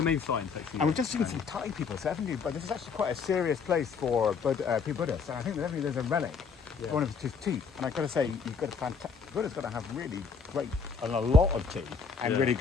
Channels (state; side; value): quieter; right; 5.4 dB